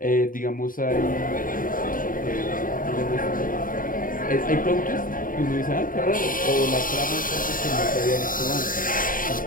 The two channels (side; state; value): right; late; 0.40 ms